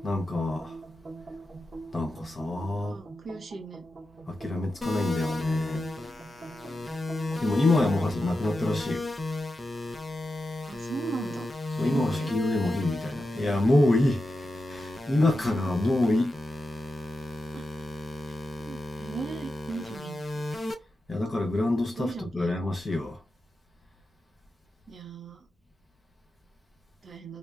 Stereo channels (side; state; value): both; normal; correlation 0.90